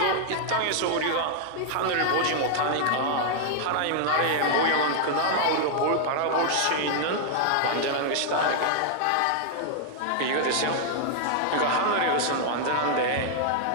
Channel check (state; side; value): different; both; correlation 0.00